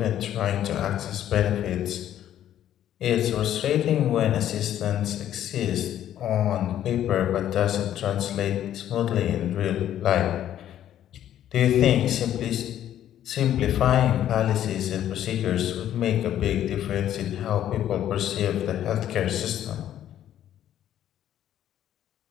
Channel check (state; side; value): quieter; right; 11.3 dB